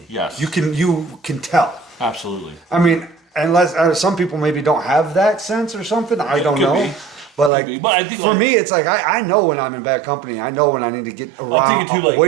Yes. You can tell. Absolutely. I mean, unless some people maybe don't have that sense or something. I don't Could know. be. But like, be. But I think, for like- me, it's like I know when I'm in bad company. I know when I need to get I'm around, thinking too, like,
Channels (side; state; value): left; drops out; at 7.5 s